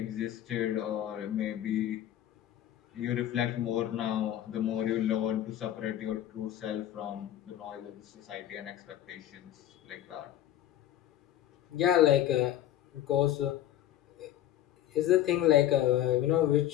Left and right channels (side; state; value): right; quieter; 12.2 dB